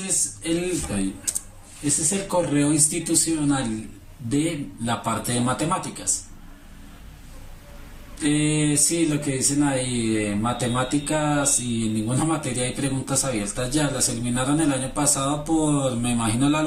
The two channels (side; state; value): both; identical; correlation 1.00